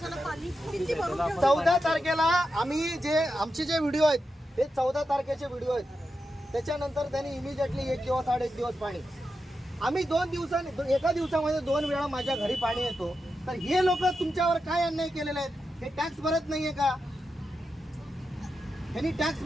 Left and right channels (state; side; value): normal; both; correlation 0.88